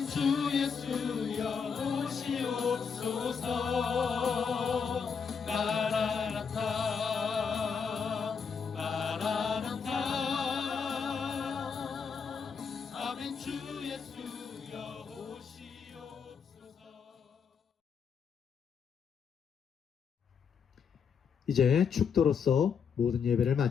주 예수여 오시옵소서. 마라나타 마라나타. 아멘. 주 예수여 오시옵소서. 이제 축도로서 모든 예배를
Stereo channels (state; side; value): quieter; right; 6.3 dB